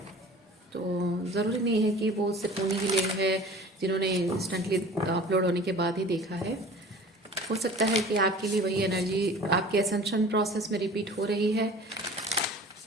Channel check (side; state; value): both; normal; correlation 0.43